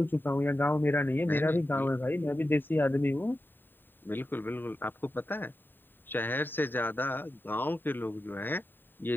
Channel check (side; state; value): right; late; 0.094 ms